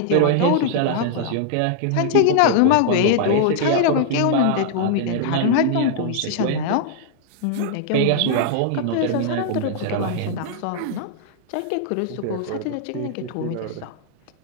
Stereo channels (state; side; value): different; both; correlation -0.01